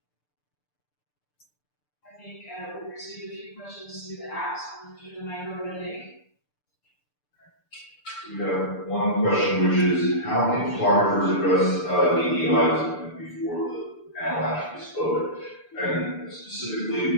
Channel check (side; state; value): right; late; 6.8 ms